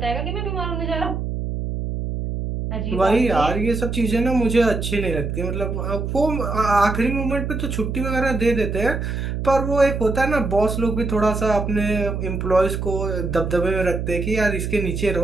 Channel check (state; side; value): noise; right; hum, 3 dB below the sound